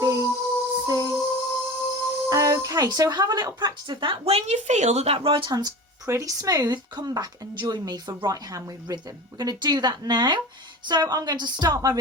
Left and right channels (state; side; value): normal; both; correlation 0.33